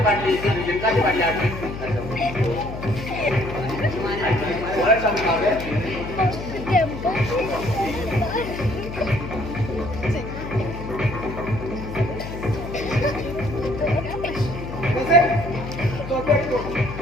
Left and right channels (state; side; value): noise; left; hum, 9 dB below the sound